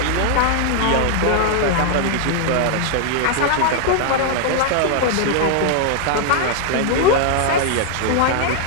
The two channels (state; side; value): different; both; correlation 0.00